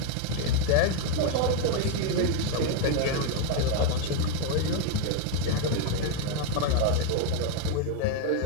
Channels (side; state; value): both; different; correlation 0.01